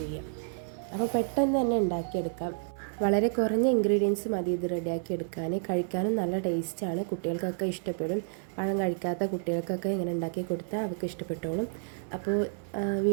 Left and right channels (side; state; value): left; silent; 58 dB below the other